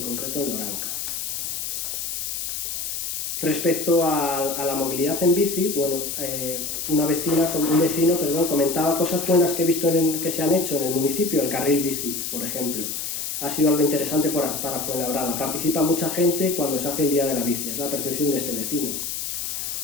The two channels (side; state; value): left; noise; hiss, 4 dB below the sound